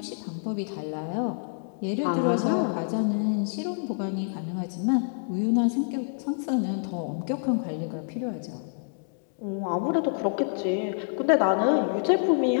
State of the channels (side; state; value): right; silent; digital silence